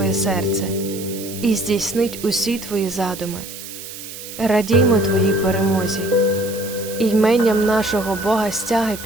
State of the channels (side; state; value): right; noise; hiss, 12 dB below the sound